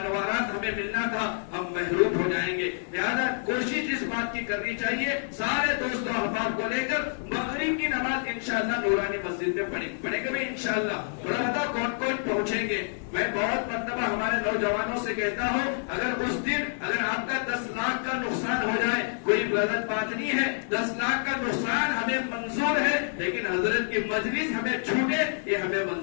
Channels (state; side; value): silent; right; digital silence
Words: انوارات ہمیں ملنا تھا ہم محروم ہو جائیں گے۔ لہذا کوشش اس بات کی کرنی چاہیے سارے دوستوں احباب کو لے کر مغرب کی نماز انشاءاللہ نورانی مسجد میں پڑھیں گے بھی انشاءاللہ۔ بتا کون کون پہنچیں گے؟ میں بہت مرتبہ ہمارے نوجوانوں سے کہتا ہوں اگر اس دن اگر آپ کا 10 لاکھ کا نقصان ہو جائے کوئی غلط بات نہیں ہے، 10 لاکھ کا نقصان ہمیں منظور ہے، لیکن حضرت کی مجلس ہمیں چھوٹے یہ ہمیں